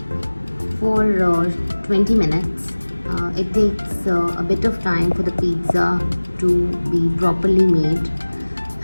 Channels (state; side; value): inverted; both; correlation -1.00